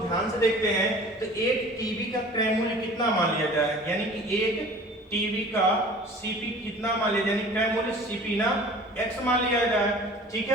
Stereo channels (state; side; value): normal; both; correlation 0.45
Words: ध्यान से देखते हैं। तो एक टीवी का क्रय मूल्य कितना मान लिया जाए, यानी कि एक टीवी का सीपी कितना मान लिया जाए, यानी क्रय मूल्य सीपी ना एक्स मान लिया जाए, ठीक